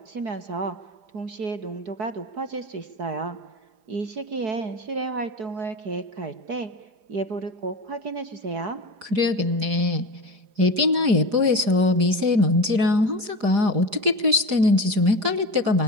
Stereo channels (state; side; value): late; left; 4.9 ms